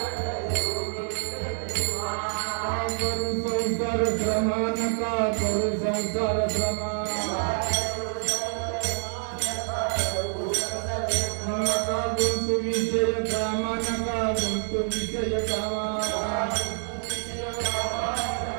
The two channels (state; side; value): silent; left; 60 dB below the other